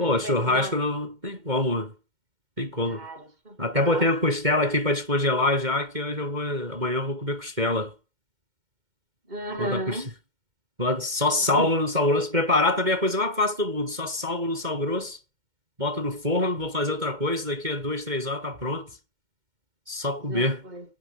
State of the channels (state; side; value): late; left; 2.1 ms